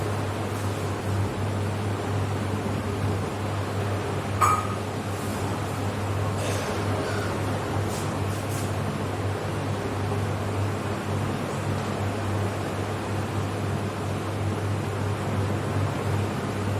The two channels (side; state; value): both; identical; correlation 1.00